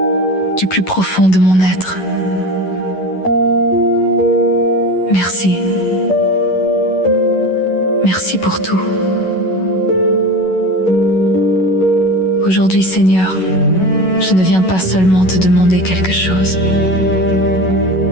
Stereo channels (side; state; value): right; late; 11 ms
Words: du plus profond de mon être, merci. Merci pour tout. Aujourd'hui, Seigneur, je ne viens pas seulement te demander quelque chose.